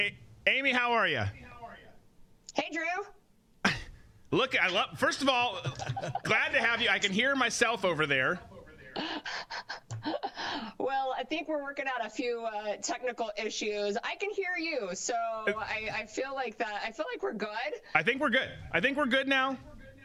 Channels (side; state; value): both; identical; correlation 1.00